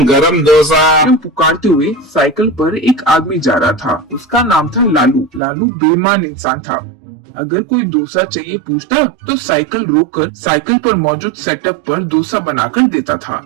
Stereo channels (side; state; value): left; drops out; at 5.4 s